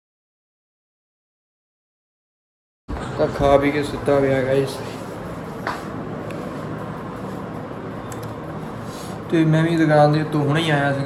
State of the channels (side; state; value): both; identical; correlation 1.00